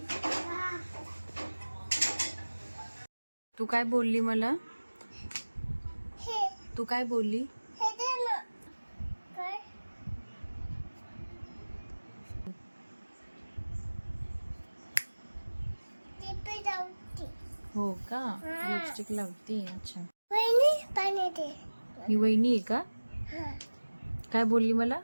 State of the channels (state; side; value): inverted; both; correlation -1.00